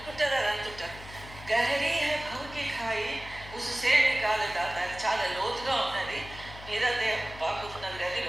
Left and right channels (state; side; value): noise; left; hum, 15 dB below the sound